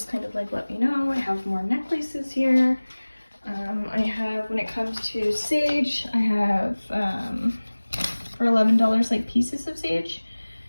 kind of like let me know. I have more necklaces here. I have, when it comes to sage, I have for $11 like pieces of sage.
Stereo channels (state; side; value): inverted; both; correlation -1.00